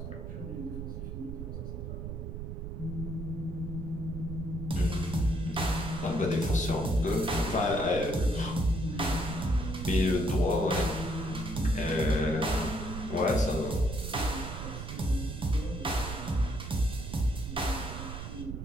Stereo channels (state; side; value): noise; right; rumble, 7 dB below the sound